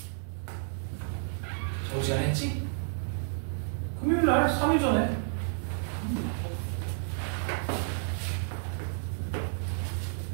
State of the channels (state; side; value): silent; left; 57 dB below the other